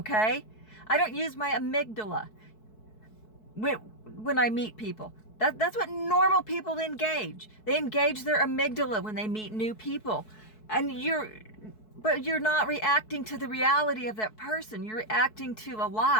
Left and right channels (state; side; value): late; right; 4.6 ms